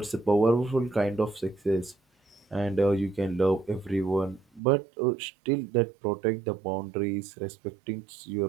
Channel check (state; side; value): drops out; left; at 4.6 s